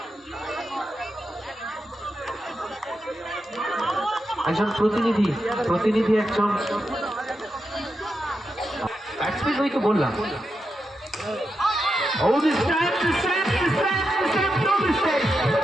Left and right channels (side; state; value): both; normal; correlation 0.87